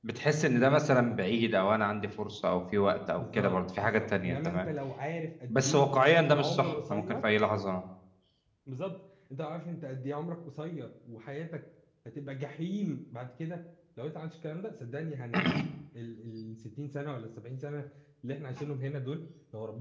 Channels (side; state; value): both; identical; correlation 1.00